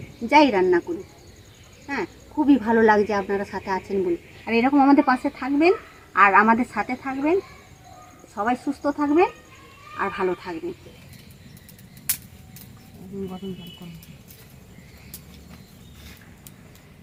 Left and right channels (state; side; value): identical; both; correlation 1.00